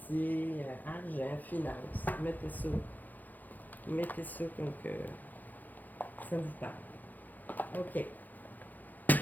argent, finance. Mettez ça. Mettez ça comme que ça vous parle. OK.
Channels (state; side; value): late; right; 0.084 ms